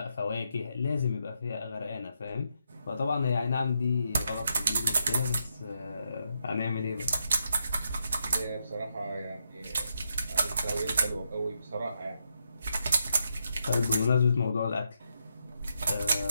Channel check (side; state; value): both; inverted; correlation -0.81